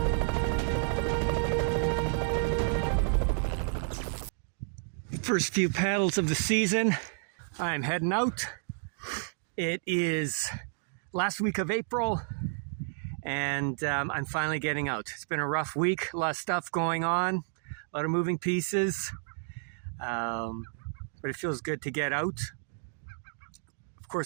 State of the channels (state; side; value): silent; left; digital silence